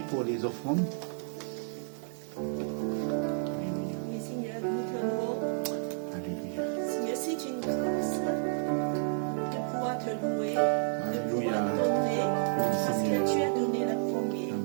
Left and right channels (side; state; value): left; silent; 57 dB below the other